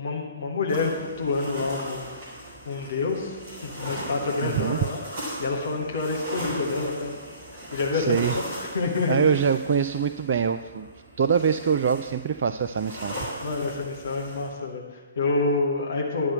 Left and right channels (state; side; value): inverted; both; correlation -0.48